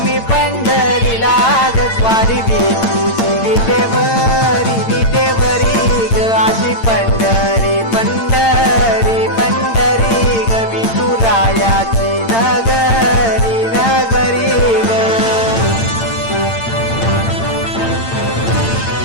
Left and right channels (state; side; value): late; right; 8.8 ms